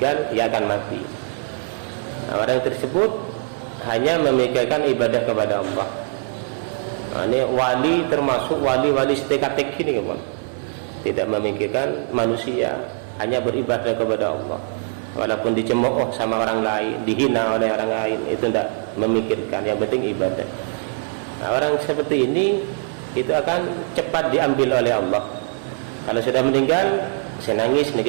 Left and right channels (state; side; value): silent; left; 64 dB below the other